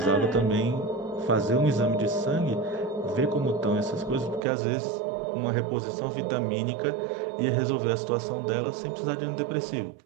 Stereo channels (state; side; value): drops out; left; at 4.4 s